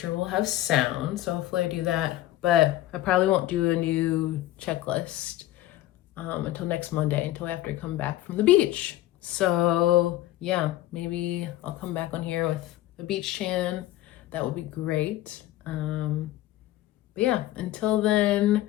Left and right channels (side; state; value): right; quieter; 15.0 dB